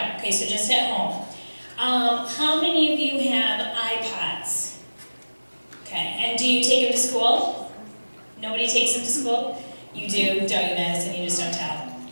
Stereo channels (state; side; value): inverted; both; correlation -1.00